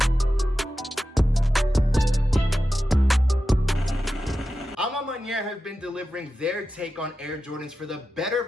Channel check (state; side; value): normal; both; correlation 0.92